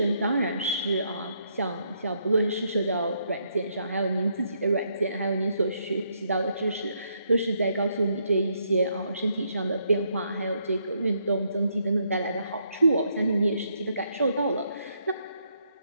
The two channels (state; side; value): inverted; both; correlation -0.75